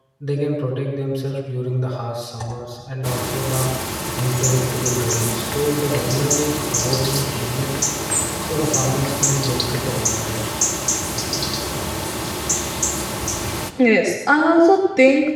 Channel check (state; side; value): identical; both; correlation 1.00